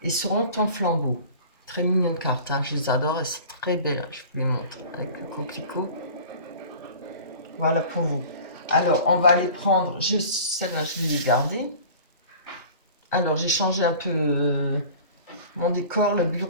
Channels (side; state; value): both; inverted; correlation -0.42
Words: et seront ton flambeau. Très mignonne carte, hein, je les adore, elles sont très belles, je vous les montre avec le coquelicot. Voilà pour vous. Alors, on va aller prendre, celle-là je l'ai gardée. Alors, j'ai changé un peu mon décor, le